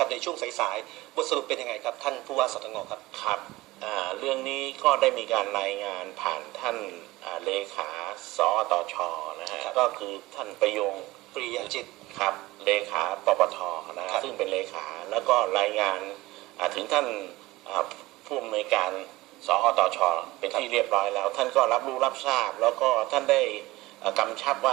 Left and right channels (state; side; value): quieter; left; 19.3 dB